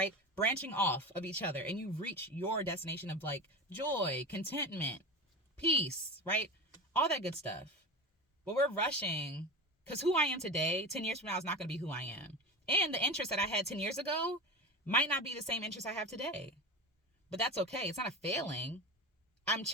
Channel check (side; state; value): both; normal; correlation 0.27